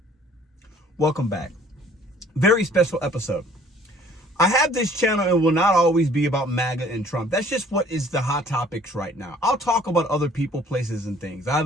Welcome back. Very special episode. I have this channel and will not always be about MAGA and Trump. That's just what is the hot topics right now. I'll talk about other people, places, and things. I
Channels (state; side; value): normal; both; correlation 0.56